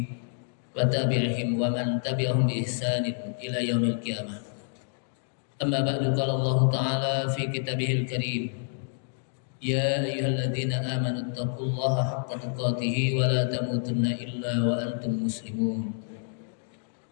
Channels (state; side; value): silent; right; digital silence